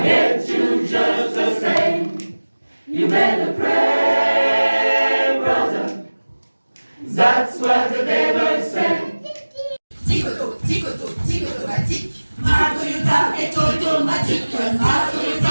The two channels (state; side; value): inverted; both; correlation -1.00